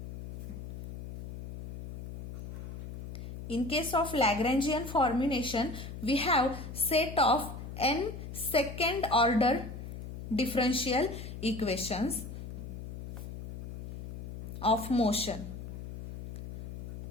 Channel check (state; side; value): noise; left; hum, 10 dB below the sound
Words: in case of Lagrangian formulation, we have set of n second order differential equations of motion,